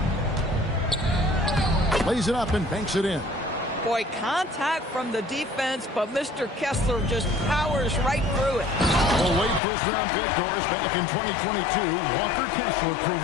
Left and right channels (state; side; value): drops out; right; at 9.6 s